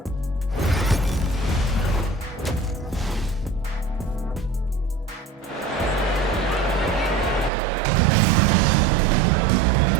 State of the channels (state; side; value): drops out; left; at 7.5 s